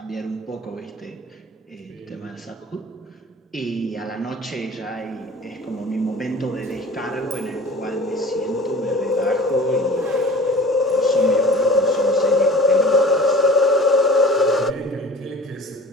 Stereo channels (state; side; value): normal; both; correlation 0.43